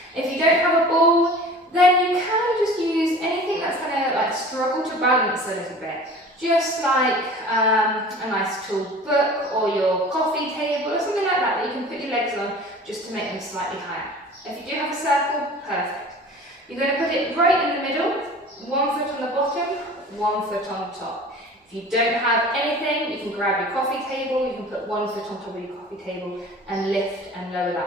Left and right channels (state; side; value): normal; both; correlation 0.42